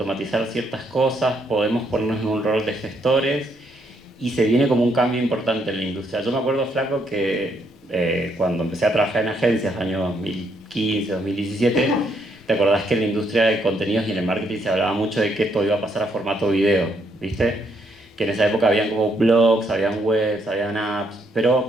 ciertas cosas, podemos ponernos en un rol de gestores y se viene como un cambio importante en la industria. Yo me acuerdo, Flaco, que cuando empecé a trabajar en agencias, año 2015, 2017, ¿te acordás que en la industria de contenidos y en el marketing se hablaba mucho de que esto iba a pasar a formato video? ¿Viste? Que en esa época habían como blogs, habían webs, habían apps,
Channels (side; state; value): both; normal; correlation 0.73